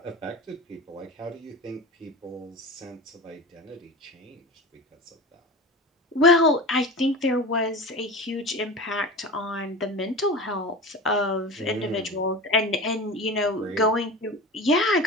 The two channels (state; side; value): normal; both; correlation 0.31